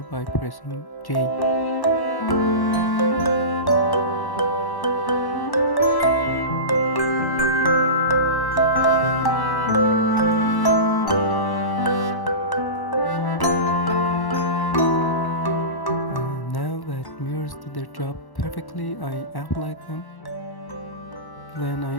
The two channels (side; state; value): right; late; 1.1 ms